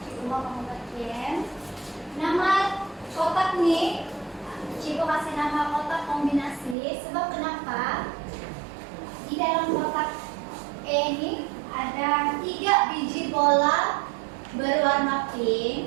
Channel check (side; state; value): left; drops out; at 6.8 s